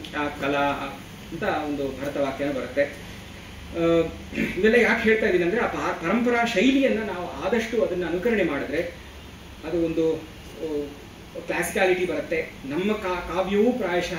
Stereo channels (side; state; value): both; identical; correlation 1.00